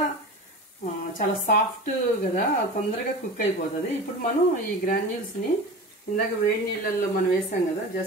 చాలా సాఫ్ట్ కదా, తొందరగా కుక్ అయిపోతుంది. ఇప్పుడు మనం ఈ గ్రాన్యూల్స్ని ఇందాక వేడి నీళ్ళల్లో మనం వేసాం కదా,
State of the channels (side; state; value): both; normal; correlation 0.31